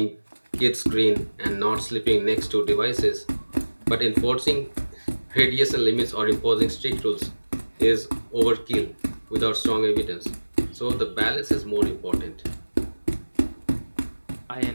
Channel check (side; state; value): both; inverted; correlation -1.00